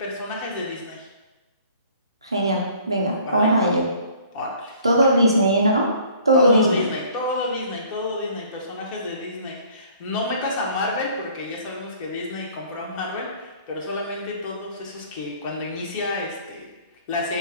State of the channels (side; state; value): both; inverted; correlation -0.54